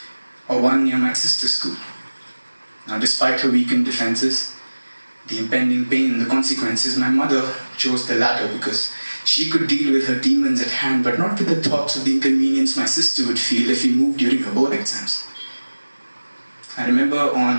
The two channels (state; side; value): inverted; both; correlation -1.00